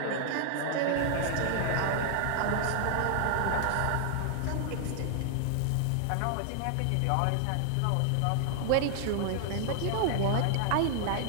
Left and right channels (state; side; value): different; both; correlation 0.00